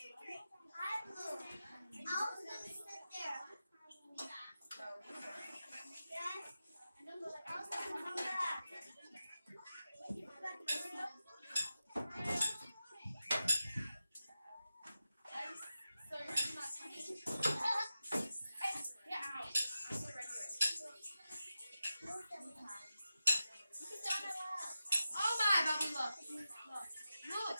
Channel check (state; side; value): inverted; both; correlation -0.92